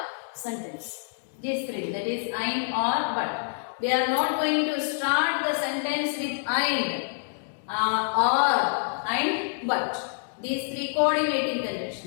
sentence. These three, that is and, or, but. We are not going to start the sentence with and, or, and, but. These three coordinating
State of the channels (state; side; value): silent; right; digital silence